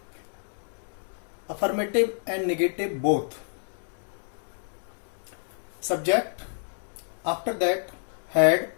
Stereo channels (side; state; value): right; silent; digital silence